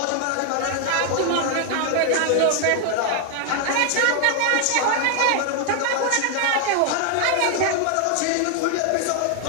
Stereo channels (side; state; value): both; different; correlation 0.00